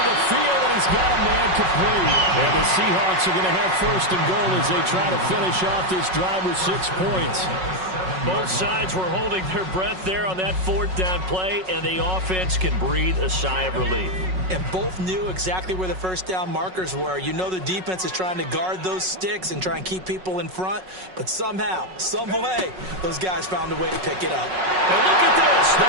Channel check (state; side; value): late; left; 5.4 ms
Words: the field, and he's got a man complete. And the Seahawks are going to have 1st and goal as they try to finish off this drive with 6 points. Both sides were holding their breath there on that 4th down play, and the offense can breathe a sigh of relief. And both knew exactly where the 1st down markers were. You know the defense is trying to guard those sticks and try and keep people in front, but somehow, some way, those guys found a way to pick it up. And look at this.